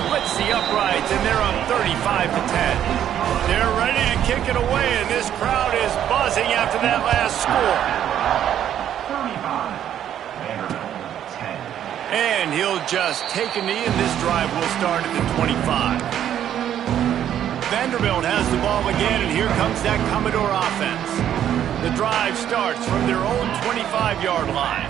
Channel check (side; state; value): left; quieter; 10.4 dB